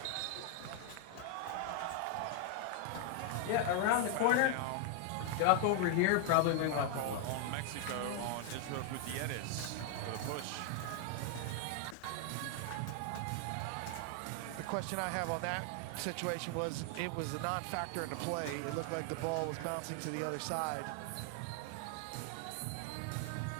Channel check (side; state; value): both; different; correlation 0.00